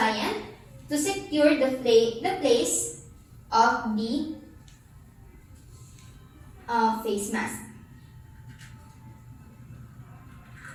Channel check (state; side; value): identical; both; correlation 1.00